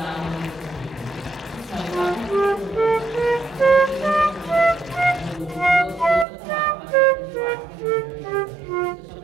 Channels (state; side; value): drops out; left; at 6.2 s